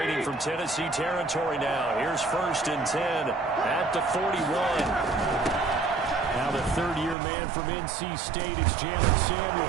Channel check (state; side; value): drops out; left; at 7.2 s